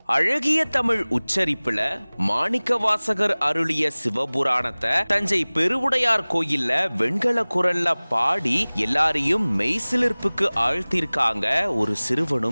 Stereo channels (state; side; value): inverted; both; correlation -1.00